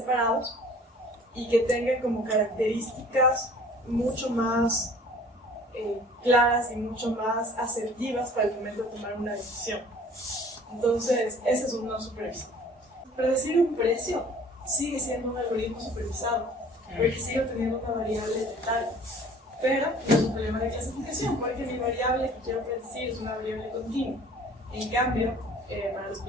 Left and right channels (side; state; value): both; normal; correlation 0.50